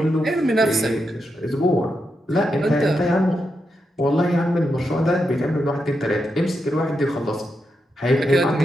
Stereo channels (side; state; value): both; normal; correlation 0.85